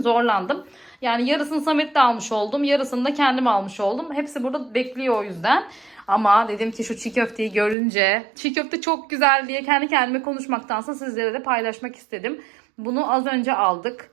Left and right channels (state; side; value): drops out; left; at 7.8 s